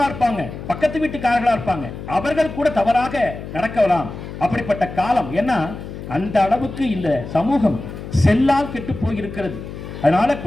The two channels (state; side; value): noise; left; hum, 10 dB below the sound